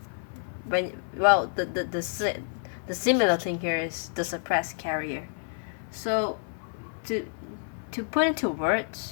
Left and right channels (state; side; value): silent; right; 59 dB below the other